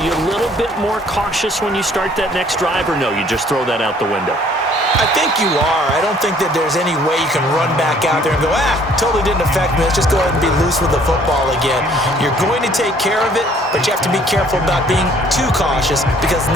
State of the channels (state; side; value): normal; both; correlation 0.59